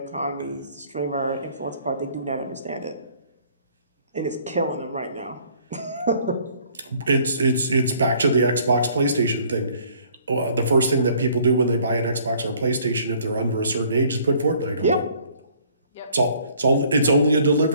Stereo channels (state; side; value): inverted; both; correlation -0.59